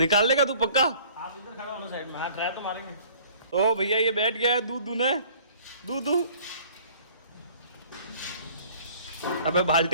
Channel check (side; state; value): both; inverted; correlation -0.52